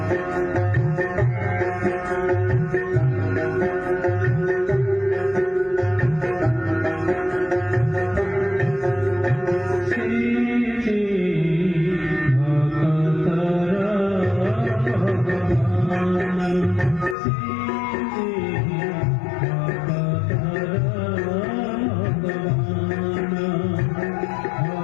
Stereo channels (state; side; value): drops out; right; at 17.2 s